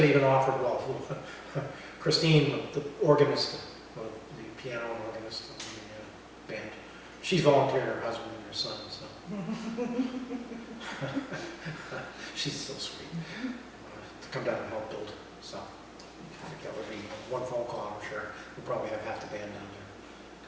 even offered, well, Christine, the organist, the piano and organist of the band, she's volunteered her husband and her son, so. She's so sweet, to come down and help build, so. I think that would be one phone call, I'm sure, we'll probably have half the band down there,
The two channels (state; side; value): identical; both; correlation 1.00